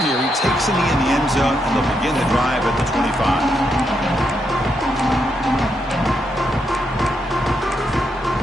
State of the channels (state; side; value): normal; both; correlation 0.80